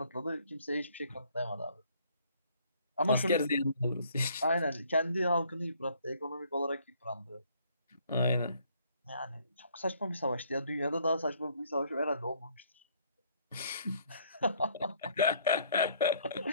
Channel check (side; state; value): both; inverted; correlation -0.63